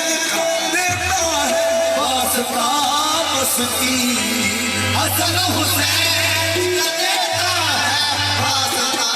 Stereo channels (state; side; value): identical; both; correlation 1.00